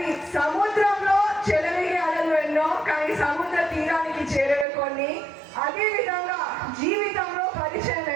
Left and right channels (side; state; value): left; drops out; at 4.7 s